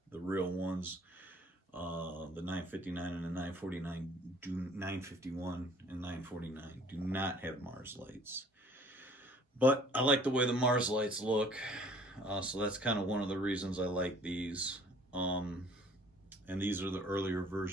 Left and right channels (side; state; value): both; normal; correlation 0.54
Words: real ones, the 959 and the 949 951 and 949 do not have Mars lights. But I like the way the Mars lights look, so that's kind of one of the reasons I like these. And these are the earlier